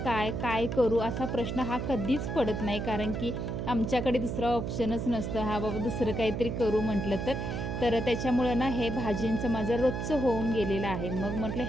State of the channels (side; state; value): right; noise; hum, 3 dB below the sound